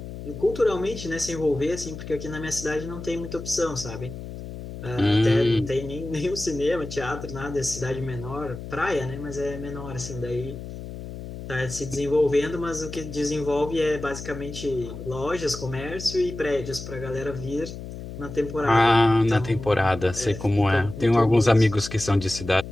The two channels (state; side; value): noise; left; hum, 10 dB below the sound